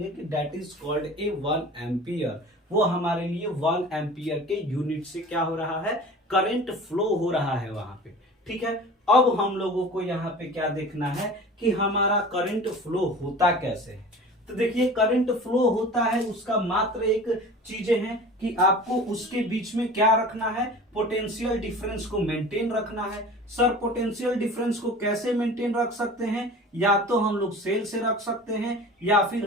कि that is called A 1 ampere. वो हमारे लिए 1 एम्पियर के यूनिट से क्या हो रहा है, करंट फ्लो हो रहा है वहां पे। ठीक है, अब हम लोगों को यहाँ पे क्या देखना है कि हमारा करंट फ्लो होता कैसे है। तो देखिए, करंट फ्लो होता है उसका मात्र एक चीजें हैं कि आपको उसके बीच में क्या रखना है, पोटेंशियल डिफरेंस को मेंटेन रखना है। सर पोटेंशियल डिफरेंस को कैसे मेंटेन रख सकते हैं, या तो हम लोग सेल से रख सकते हैं या फिर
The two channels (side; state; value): both; normal; correlation 0.39